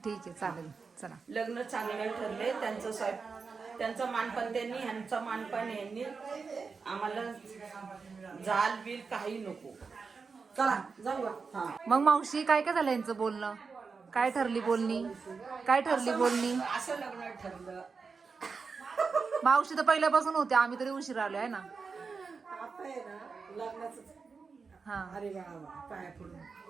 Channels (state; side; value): quieter; left; 5.0 dB